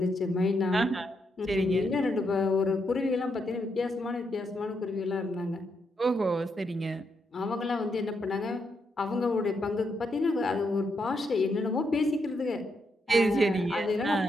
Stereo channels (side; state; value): both; normal; correlation 0.80